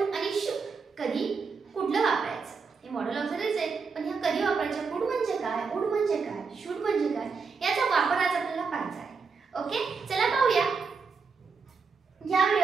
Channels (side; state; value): left; quieter; 5.1 dB